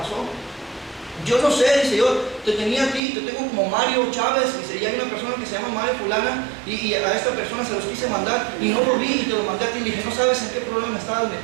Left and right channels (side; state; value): left; drops out; at 3.0 s